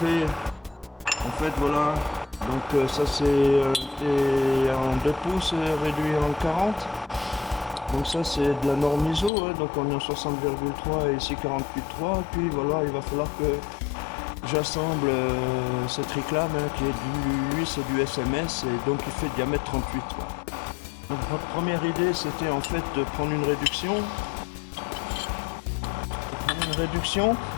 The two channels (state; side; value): drops out; right; at 9.3 s